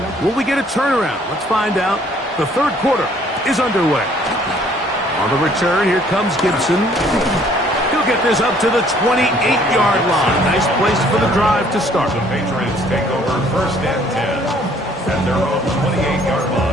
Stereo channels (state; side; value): normal; both; correlation 0.60